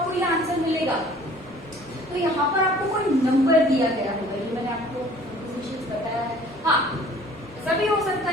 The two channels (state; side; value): normal; both; correlation 0.52